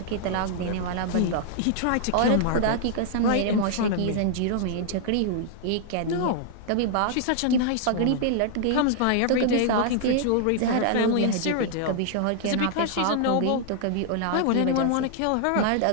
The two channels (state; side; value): different; both; correlation 0.00